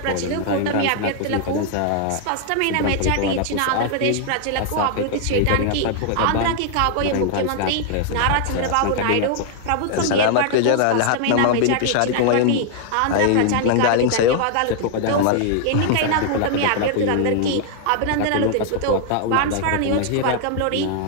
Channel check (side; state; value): both; different; correlation 0.00